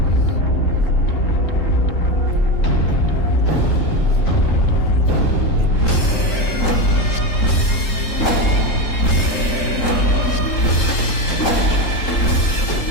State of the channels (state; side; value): late; right; 3.8 ms